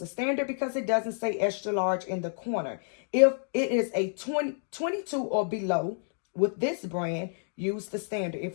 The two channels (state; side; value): silent; right; digital silence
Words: a standard because it doesn't say extra large in the corner. If it is a 22 or below with this brand, use the standard.